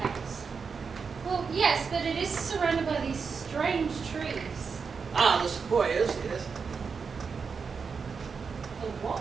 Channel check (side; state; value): left; quieter; 5.5 dB